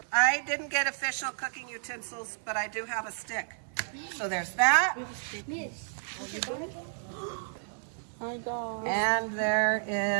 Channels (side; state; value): left; silent; 57 dB below the other